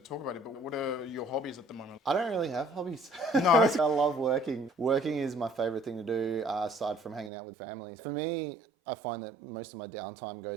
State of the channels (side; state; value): left; drops out; at 7.3 s